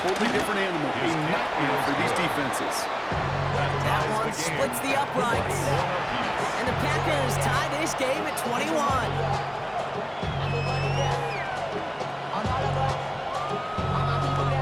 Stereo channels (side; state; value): both; identical; correlation 1.00